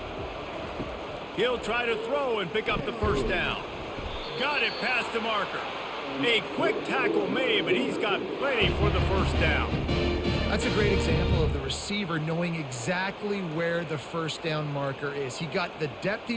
He'll try to throw and pick up the 1st down. Got it past the marker. A quick tackle made, but he's got plenty for the 1st down. That's a great example of the receiver knowing exactly where the 1st down marker is. He got the depth he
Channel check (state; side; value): identical; both; correlation 1.00